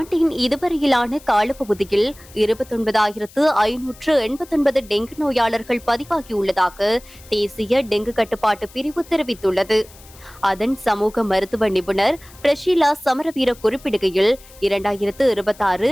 இதுவரையிலான காலப்பகுதியில் 29,589 டெங்கு நோயாளர்கள் பதிவாகியுள்ளதாக தேசிய டெங்கு கட்டுப்பாட்டு பிரிவு தெரிவித்துள்ளது. அதன் சமூக மருத்துவ நிபுணர் பிரஷீலா சமரவீர குறிப்பிடுகையில் 2026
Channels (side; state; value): left; noise; hiss, 23 dB below the sound